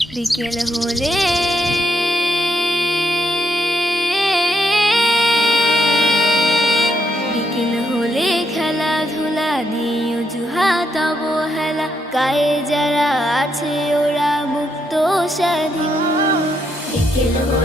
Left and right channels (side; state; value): both; normal; correlation 0.78